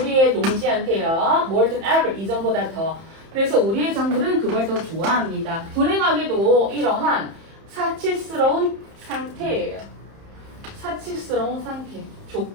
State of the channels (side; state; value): left; late; 30 ms